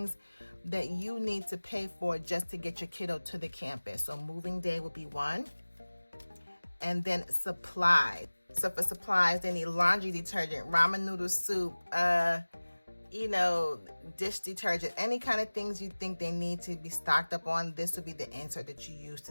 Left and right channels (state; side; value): inverted; both; correlation -1.00